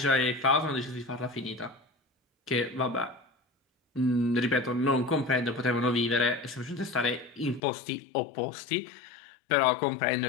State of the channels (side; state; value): right; drops out; at 7.6 s